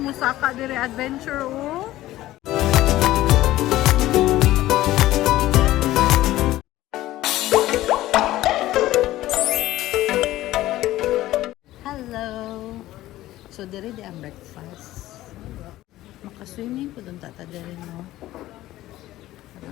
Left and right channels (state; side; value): quieter; right; 15.6 dB